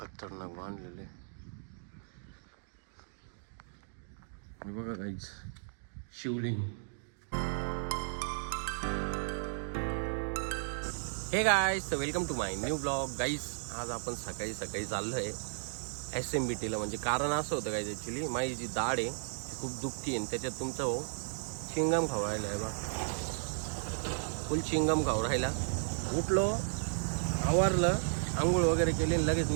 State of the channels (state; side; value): silent; left; digital silence